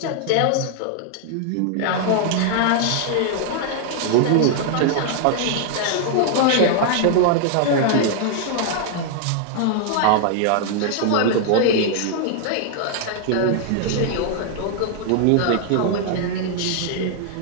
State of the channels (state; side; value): different; both; correlation 0.00